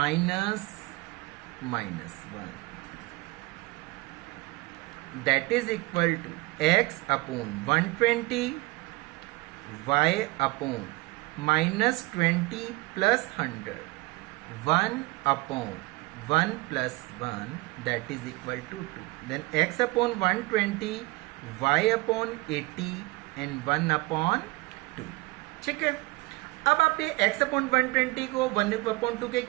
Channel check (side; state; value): left; quieter; 22.8 dB